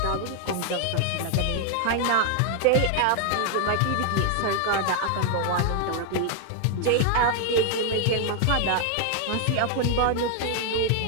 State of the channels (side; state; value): both; different; correlation 0.00